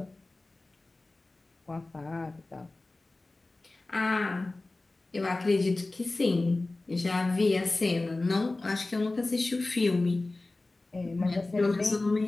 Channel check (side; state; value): right; quieter; 3.1 dB